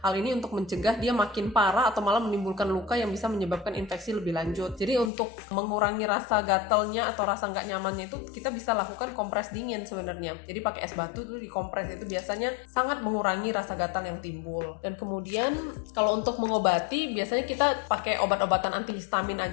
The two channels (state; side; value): drops out; right; at 5.1 s